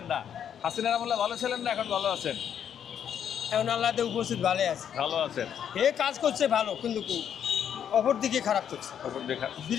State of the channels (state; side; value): quieter; right; 8.9 dB